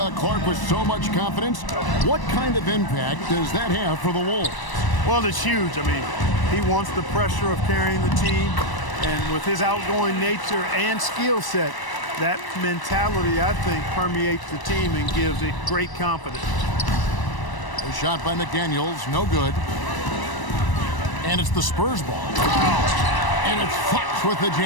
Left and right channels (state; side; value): late; right; 1.0 ms